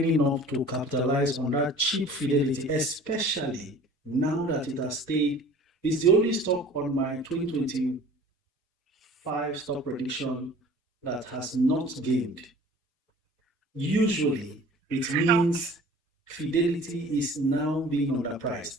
up to capitalize on that cheap Fidelity, especially now that it has stayed. It's the only stock on my 2025 stock prediction that has not gained. Usually, it means Fidelity is now being underpriced.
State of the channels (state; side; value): normal; both; correlation 0.46